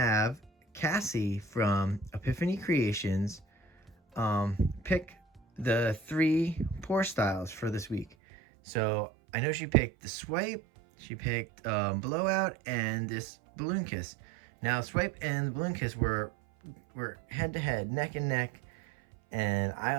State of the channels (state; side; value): drops out; left; at 8.1 s